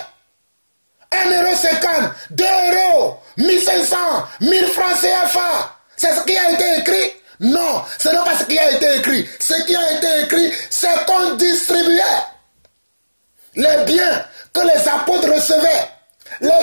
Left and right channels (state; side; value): inverted; both; correlation -1.00